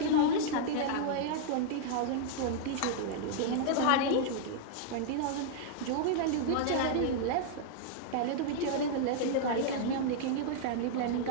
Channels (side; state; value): both; different; correlation -0.01